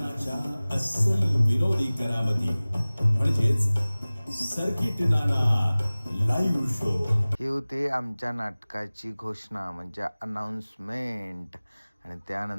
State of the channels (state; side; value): inverted; both; correlation -0.99